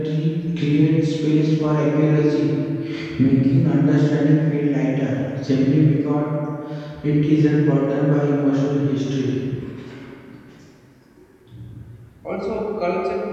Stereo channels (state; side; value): identical; both; correlation 1.00